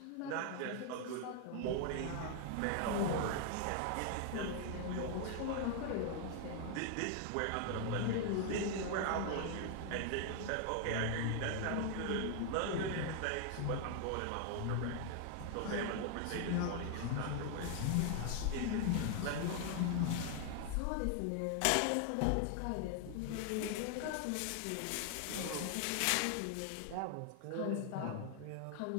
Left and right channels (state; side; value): different; both; correlation 0.00